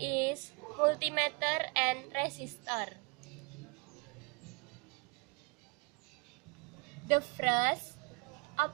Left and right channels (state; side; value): quieter; left; 28.9 dB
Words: multimeter and resistor. The first,